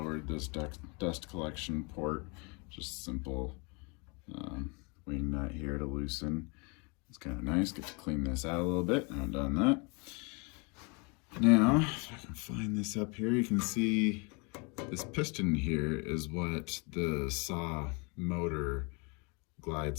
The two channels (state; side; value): quieter; right; 31.5 dB